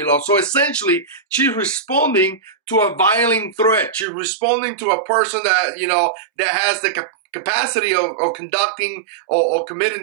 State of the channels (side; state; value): left; drops out; at 4.0 s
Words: So essentially, she's responding to a violent threat. She's responding to a person that, that has the capacity of conducting or